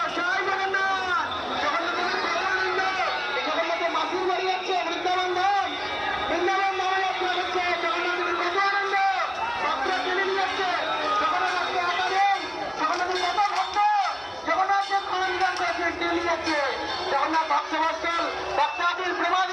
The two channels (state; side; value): identical; both; correlation 1.00